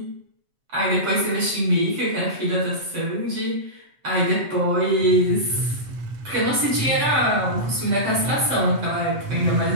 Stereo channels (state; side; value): late; left; 7.7 ms